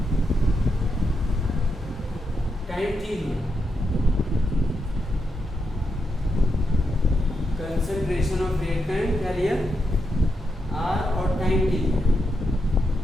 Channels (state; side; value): normal; both; correlation 0.84